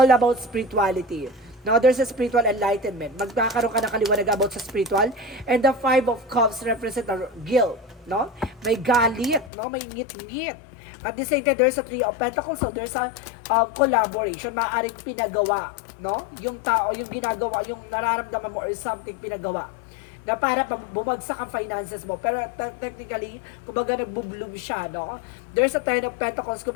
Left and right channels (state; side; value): drops out; right; at 9.5 s